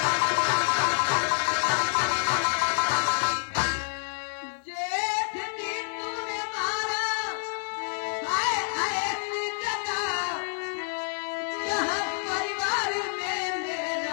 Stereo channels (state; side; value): silent; right; digital silence